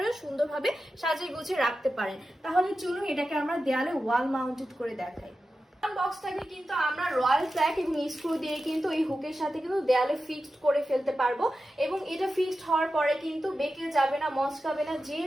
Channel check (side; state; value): both; normal; correlation 0.92